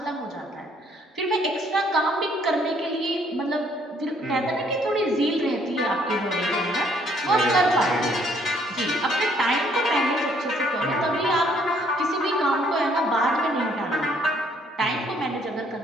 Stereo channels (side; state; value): both; normal; correlation 0.65